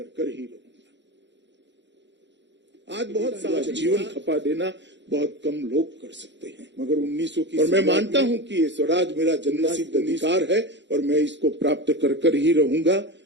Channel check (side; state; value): left; late; 0.52 ms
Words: कर ही रहूंगा। आज बहुत सारा जीवन खपा देना बहुत कम लोग कर सकते हैं, मगर 1900 की, और मैं मानता हूं कि ये स्वराज मेरा जन्मसिद्ध अधिकार है और मैं इसको प्राप्त कर कर ही रहूंगा।